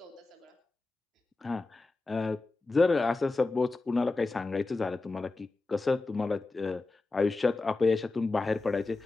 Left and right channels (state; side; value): quieter; right; 3.5 dB